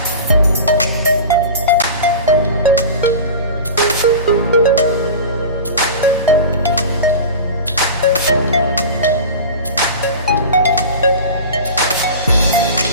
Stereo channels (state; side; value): inverted; both; correlation -0.32